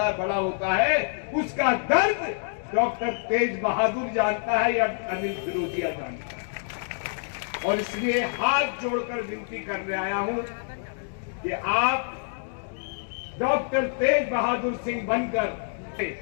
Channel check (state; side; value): silent; right; digital silence